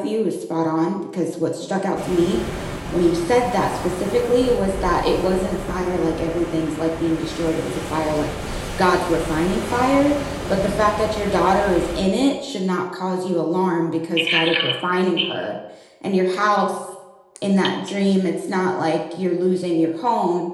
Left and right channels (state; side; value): identical; both; correlation 1.00